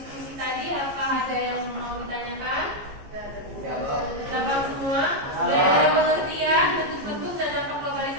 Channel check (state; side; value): late; left; 15 ms